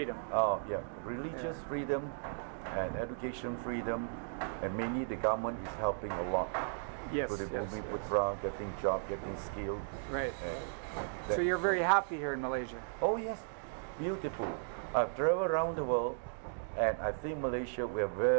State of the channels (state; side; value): silent; left; digital silence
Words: Oh, yeah. Religious freedom and education freedom, and mainly the government is helping a lot. Yes. To the Putra, getting job, getting skilled. Right. So you're very happy here in Malaysia? Oh, yes. Beautiful. I've traveled around the world, and I think Malaysia, we are